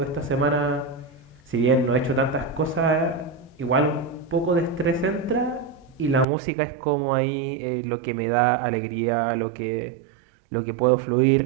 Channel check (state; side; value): drops out; left; at 6.2 s